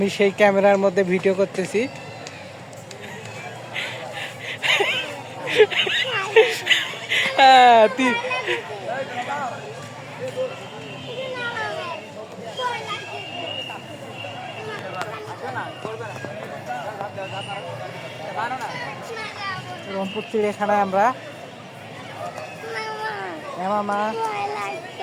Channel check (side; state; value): both; identical; correlation 1.00